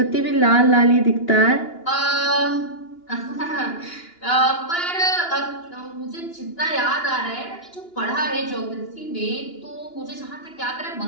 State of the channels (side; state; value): right; late; 2.9 ms